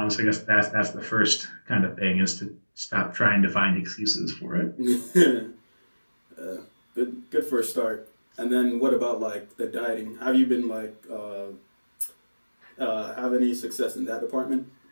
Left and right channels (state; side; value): inverted; both; correlation -1.00